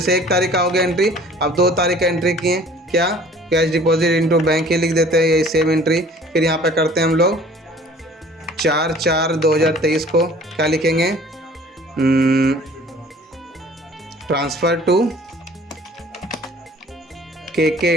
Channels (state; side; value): normal; both; correlation 0.50